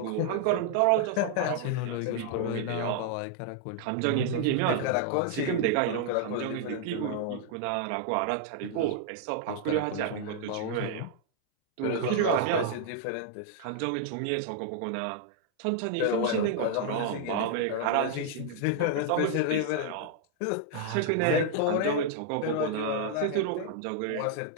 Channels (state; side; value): different; both; correlation -0.01